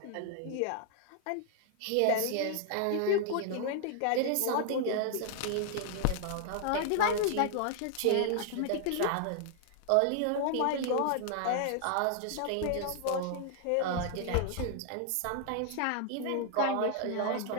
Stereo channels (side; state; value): both; different; correlation 0.00